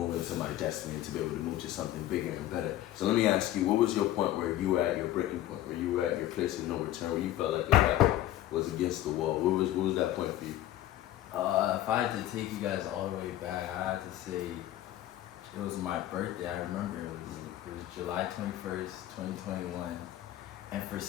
into my destiny, to be able to move to something bigger and better. So let me ask you, what was your point where you were at your breaking point, where you were at your place of no return, where you felt like your back was against the wall? What was that point for you? If I had to take you guys all the way back, I had to say it was my birthday. I remember it was July 21st, 2021. And for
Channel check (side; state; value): right; quieter; 13.5 dB